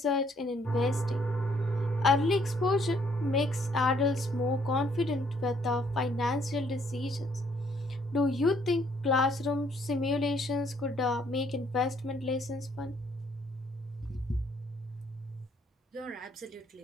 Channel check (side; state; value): both; normal; correlation 0.66